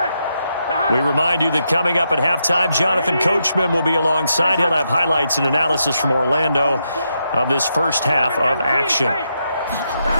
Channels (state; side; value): inverted; both; correlation -0.82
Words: We remind you that coming up at halftime, Jonathan Coachman will be alongside. He'll have highlights and analysis from Orlando of this first half of action.